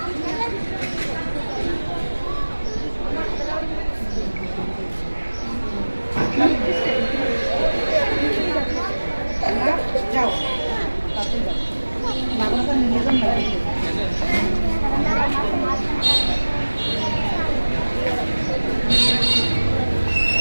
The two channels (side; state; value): both; inverted; correlation -1.00